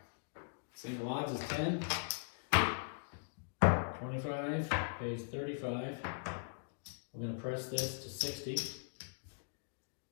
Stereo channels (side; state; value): right; silent; digital silence